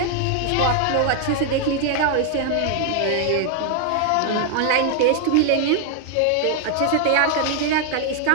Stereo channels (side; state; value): both; different; correlation 0.00